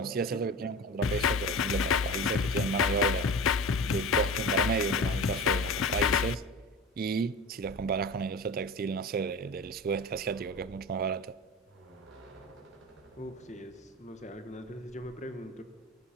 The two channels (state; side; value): normal; both; correlation 0.32